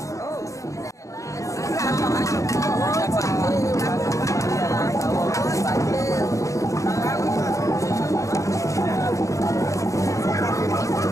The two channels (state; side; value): late; right; 0.15 ms